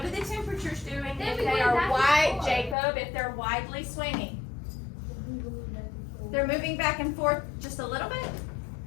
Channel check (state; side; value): drops out; right; at 2.8 s